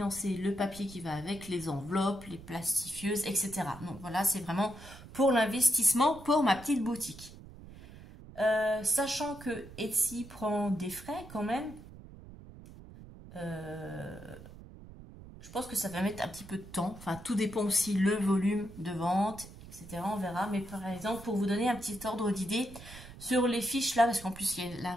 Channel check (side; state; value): right; noise; rumble, 17 dB below the sound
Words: le papier qui va avec, les enveloppes, les plastifieuses, etc. Donc voilà, c'est vraiment pour l'investissement pour ma petite boutique. Sachant que Etsy prend des frais quand même, je pense que ça va mettre un petit peu de temps. Enfin, tout dépend aussi le volume de vente, etc. On verra. Mais par exemple, pour vous donner un petit ordre d'idée, sur les fiches là, parce qu'en plus il y a la